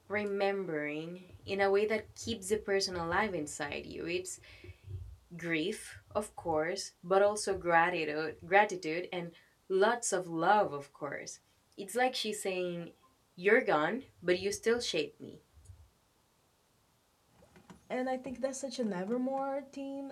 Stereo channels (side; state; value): both; identical; correlation 1.00